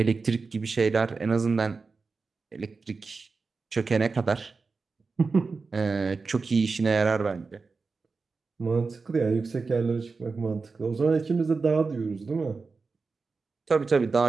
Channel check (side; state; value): left; quieter; 4.4 dB